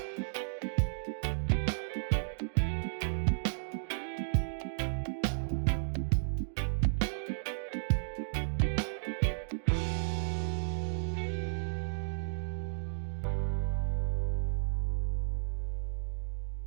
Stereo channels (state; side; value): silent; left; digital silence